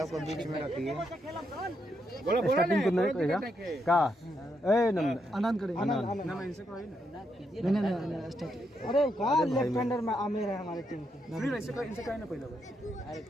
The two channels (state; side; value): normal; both; correlation 0.80